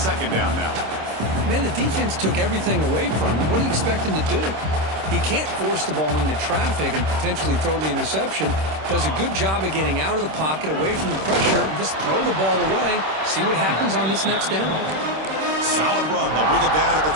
down now. Man, the defense took everything away from him. What do you expect him to do? He can't force the ball into traffic and potentially throw the interception. Does a good job of getting out of the pocket, away from the pressure, and just throw the ball away. See what happens on this next down. Solid run. They'll bring it down at the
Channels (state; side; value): late; left; 26 ms